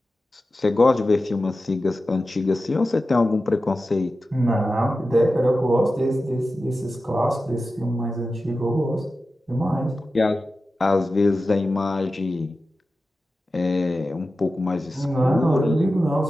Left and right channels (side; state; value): both; normal; correlation 0.93